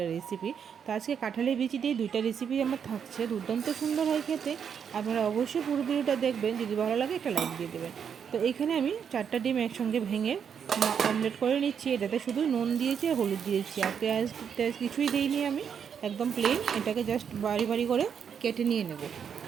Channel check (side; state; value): left; quieter; 7.5 dB